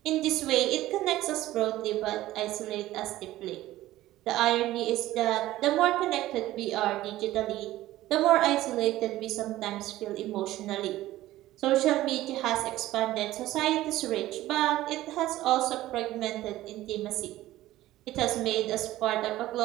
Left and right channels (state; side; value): quieter; left; 15.6 dB